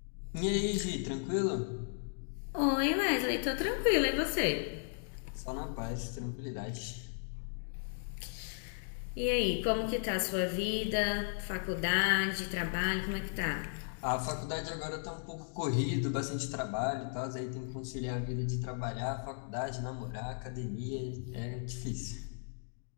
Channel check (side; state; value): right; silent; digital silence